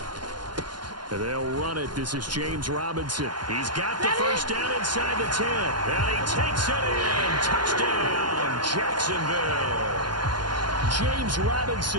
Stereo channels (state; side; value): late; left; 0.71 ms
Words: They'll run it. This is James Robinson. He's got the first down inside the 10. And he takes it in. Touchdown, Jacksonville. James